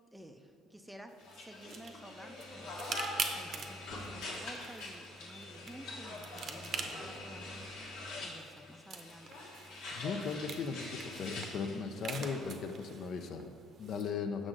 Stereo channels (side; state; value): both; normal; correlation 0.61